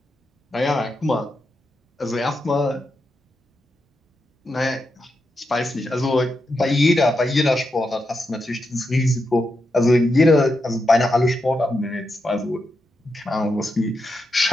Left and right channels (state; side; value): normal; both; correlation 0.86